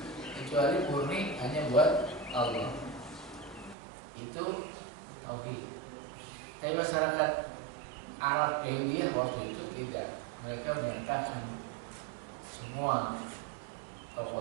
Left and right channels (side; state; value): left; drops out; at 3.8 s